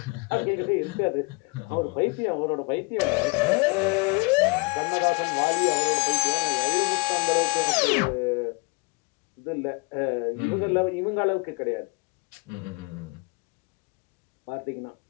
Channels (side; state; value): right; quieter; 29.2 dB